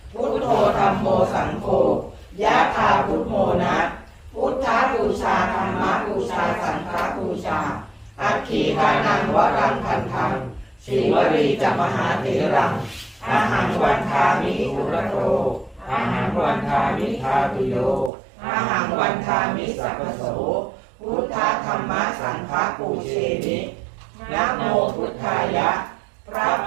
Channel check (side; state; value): left; drops out; at 18.1 s